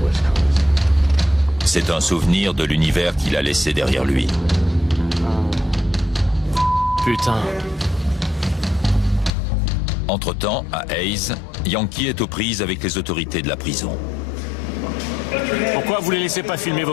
C'est un souvenir de l'univers qu'il a laissé derrière lui. Putain. Entre-temps, à Hayes, Yankee est aux prises avec les autorités de la prison. Pourquoi vous les laissez pas filmer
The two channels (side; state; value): right; drops out; at 9.3 s